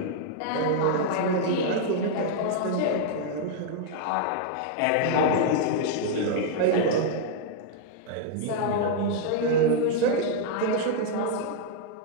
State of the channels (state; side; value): different; both; correlation -0.01